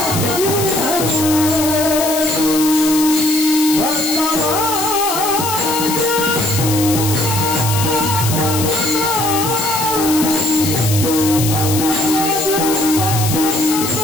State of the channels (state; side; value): noise; left; hiss, 4 dB below the sound